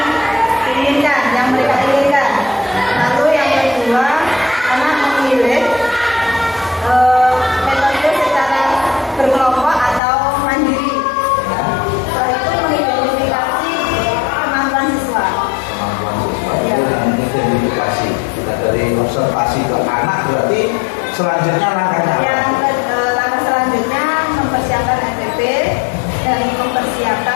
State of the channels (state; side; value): drops out; right; at 10.0 s